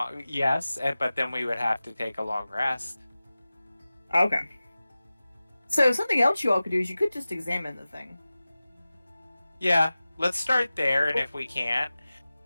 yes, but then we would have to take a long rest. Okay. So something else you all could do is you could just examine the thing. Yeah, let's start there, and if we can't,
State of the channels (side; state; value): both; inverted; correlation -0.96